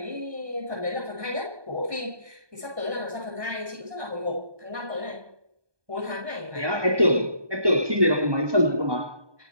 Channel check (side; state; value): left; late; 1.2 ms